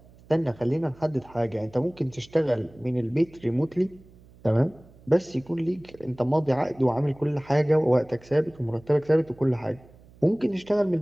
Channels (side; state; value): right; noise; hum, 25 dB below the sound